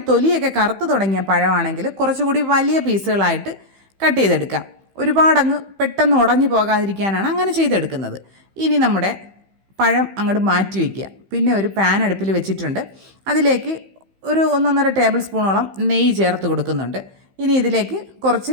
തൊലിയൊക്കെ കറുത്ത് തുടങ്ങിയ പഴമാണെങ്കിൽ കുറച്ചുകൂടി വലിയ പീസുകളായിട്ട് കട്ട് ചെയ്തെടുക്കാം. ഒരുപാടങ്ങ് പെട്ടെന്ന് ഉടഞ്ഞു പോകാതിരിക്കാനാണ് അങ്ങനെ ചെയ്തെടുക്കുന്നത്. ഇനി നമ്മുടെ പഴം അങ്ങോട്ട് മാറ്റി വയ്ക്കുക. പിന്നെ ഒരു പാൻ അടുപ്പിൽ വെച്ചിട്ടുണ്ട്. അതിലേക്ക് ഒരു 1.5 ടേബിൾ സ്പൂണോളം നെയ്യ് ചേർത്ത് കൊടുക്കുന്നുണ്ട്. ഇനി ഇതിലേക്ക്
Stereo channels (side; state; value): left; late; 15 ms